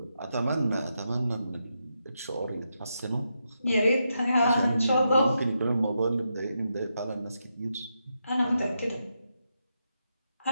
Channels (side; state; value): both; inverted; correlation -0.84